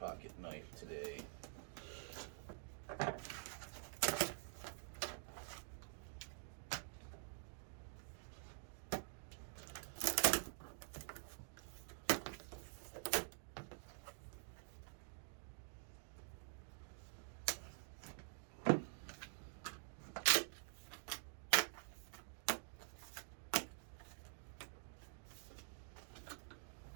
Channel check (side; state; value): left; silent; digital silence